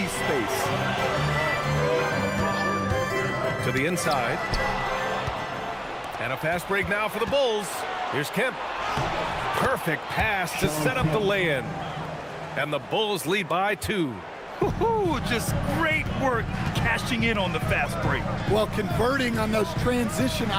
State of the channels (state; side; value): identical; both; correlation 1.00